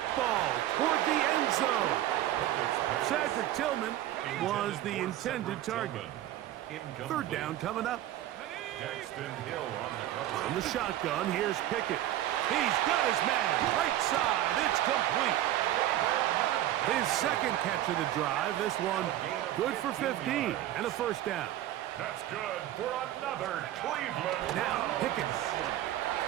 ball toward the end zone. Cedric Tillman was the intended target. Third down coming up. On the shotgun, here's Pickett. He's got his man. Right side. It's complete. His second catch of the drive. This one good for 15 and a first down. That's good for another Cleveland. Now Pickett.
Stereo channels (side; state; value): left; quieter; 13.3 dB